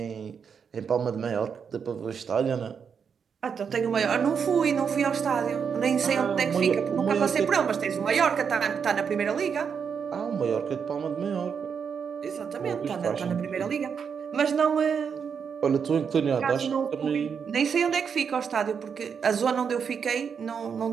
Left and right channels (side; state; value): left; quieter; 6.7 dB